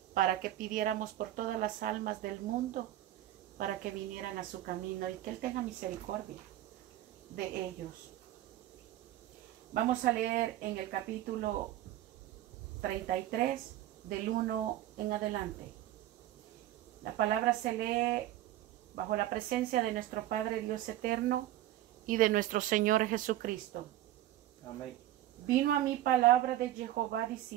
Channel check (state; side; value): quieter; left; 13.7 dB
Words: para que pidiéramos por todas las almas del mundo para que vinieran a su camino y que Él tenga misericordia de ellos. Vamos a leer en el capítulo 33 del 1 en adelante. La palabra se lee bajo la presencia de nuestro Padre Dios eterno y de nuestro Señor Jesucristo. Amén. Vino a mí palabra de Jehová